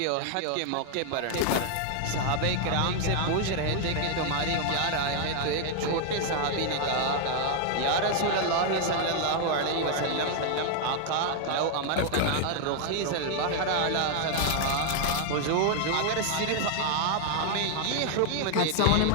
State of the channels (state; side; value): different; both; correlation 0.00